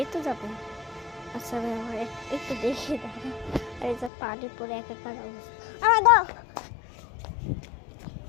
তো যাবো। আচ্ছা আমি আমার একটু দেখি দাঁড়া, আর এই যে পানি পরে একাকার অবস্থা।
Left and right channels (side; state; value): right; drops out; at 4.1 s